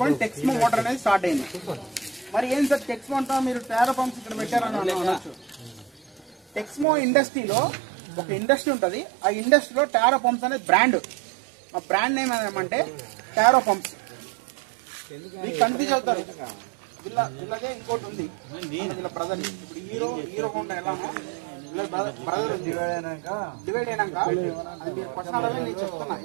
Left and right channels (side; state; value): left; drops out; at 6.9 s